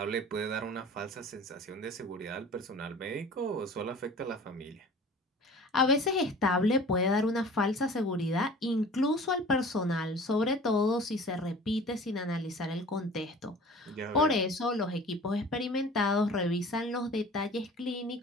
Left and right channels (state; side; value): normal; both; correlation 0.44